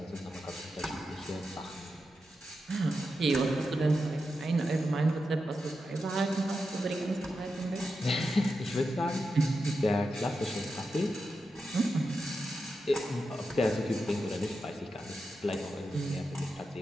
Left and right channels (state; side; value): normal; both; correlation 0.89